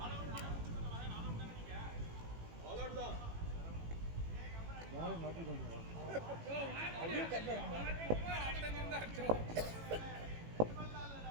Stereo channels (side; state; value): left; late; 18 ms